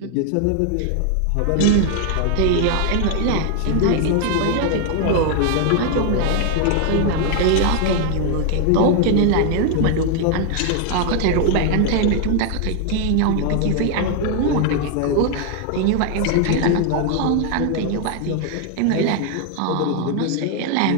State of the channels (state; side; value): different; both; correlation 0.00